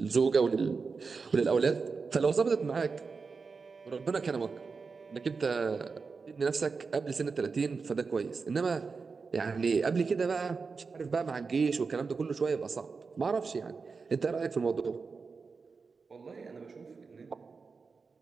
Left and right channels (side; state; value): left; quieter; 4.8 dB